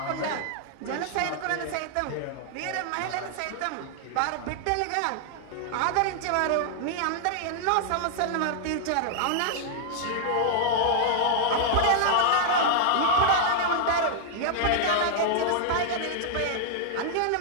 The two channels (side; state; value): both; different; correlation -0.01